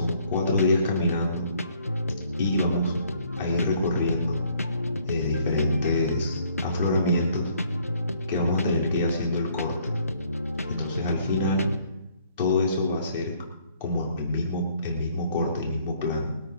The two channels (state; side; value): inverted; both; correlation -0.63